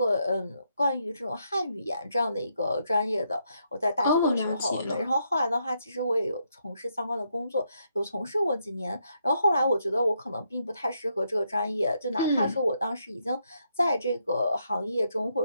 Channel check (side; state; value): both; inverted; correlation -0.78